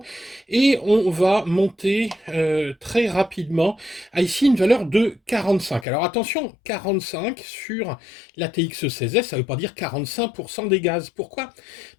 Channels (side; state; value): right; drops out; at 5.9 s